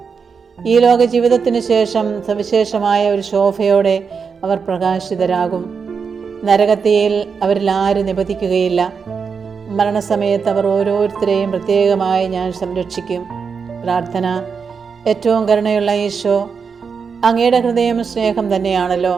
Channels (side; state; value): left; quieter; 5.8 dB